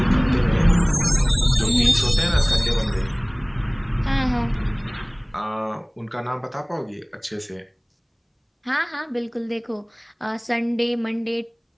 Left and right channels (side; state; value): both; identical; correlation 1.00